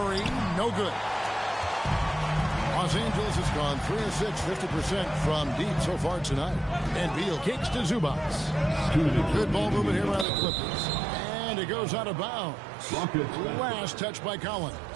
no good. Los Angeles has gone 3 of 6, 50% from deep so far tonight. And Beal kicks to Zubac. Good ball movement here by the Clippers. And it goes out of bounds. Last touch by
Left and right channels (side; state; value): left; drops out; at 10.2 s